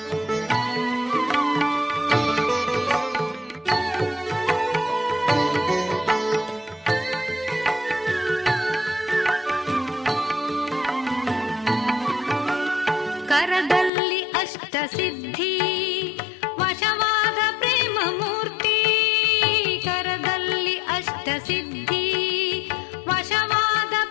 ಕರದಲ್ಲಿ ಅಷ್ಟಸಿದ್ಧಿ ವಶವಾದ ಪ್ರೇಮ ಮೂರ್ತಿ. ಕರದಲ್ಲಿ ಅಷ್ಟಸಿದ್ಧಿ ವಶವಾದ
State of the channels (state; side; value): drops out; right; at 13.9 s